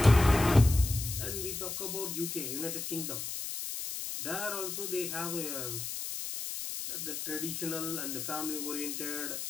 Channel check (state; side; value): noise; left; hiss, 5 dB below the sound